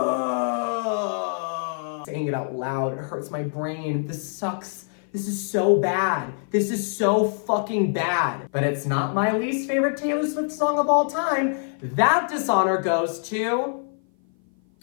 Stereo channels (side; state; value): right; silent; 55 dB below the other